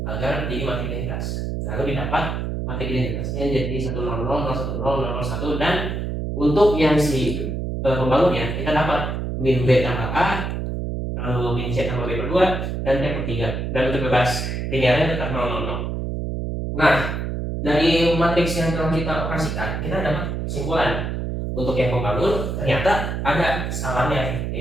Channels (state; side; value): noise; right; hum, 3 dB below the sound